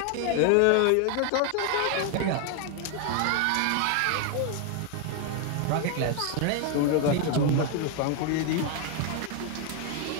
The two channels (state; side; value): different; both; correlation 0.01